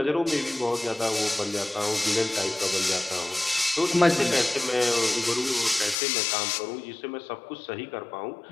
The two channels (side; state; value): right; drops out; at 6.0 s